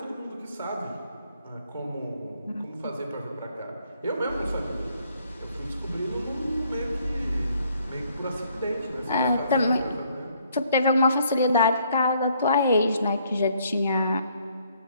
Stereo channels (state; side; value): inverted; both; correlation -0.67